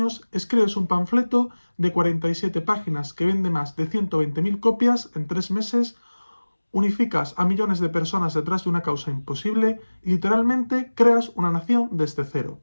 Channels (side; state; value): both; inverted; correlation -1.00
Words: escribes un panfleto de 47 páginas que vende más de 120.000 copias en 3 meses. Unificas a millones de personas detrás de una causa imposible y literalmente creas una nación desde cero.